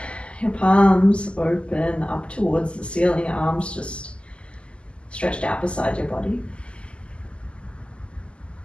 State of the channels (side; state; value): right; late; 0.053 ms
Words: your palms open up towards the ceiling, arms just stretched out beside your body.